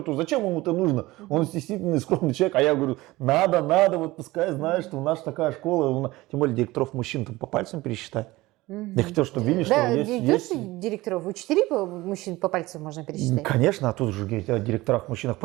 зачем ему это нужно? Он стеснительный, скромный человек. А я говорю, надо, вот пускай знает, что у нас такая школа. Тем более директоров мужчин там по пальцам пересчитать. Я хотел, чтобы видели, что Да, есть... директоров, учителей мужчин по пальцам можно пересчитать. Конечно, а тут же говорить о директорах-мужчинах.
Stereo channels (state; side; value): quieter; left; 19.3 dB